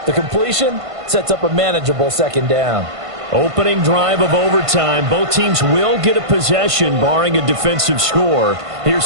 The completion sets up a manageable second down. Opening drive of overtime. Both teams will get a possession, barring a defensive score.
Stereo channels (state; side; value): late; left; 1.5 ms